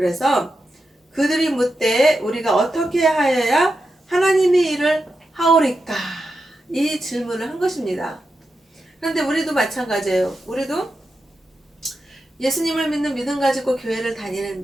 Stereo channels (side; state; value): both; normal; correlation 0.88